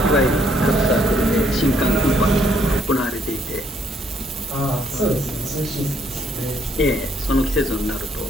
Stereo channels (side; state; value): both; normal; correlation 0.70